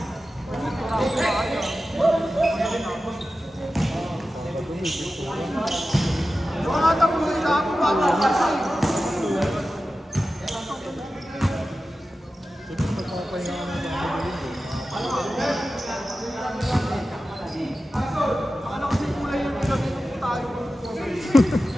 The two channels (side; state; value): both; normal; correlation 0.94